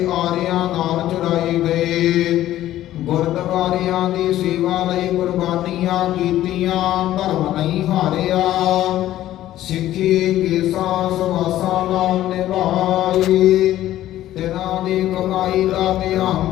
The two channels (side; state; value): right; quieter; 13.6 dB